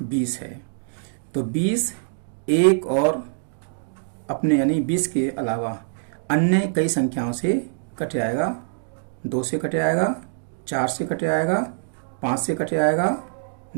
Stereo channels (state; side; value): silent; left; digital silence